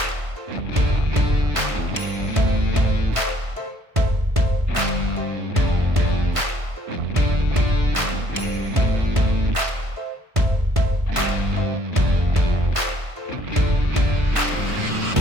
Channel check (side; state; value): left; late; 1.5 ms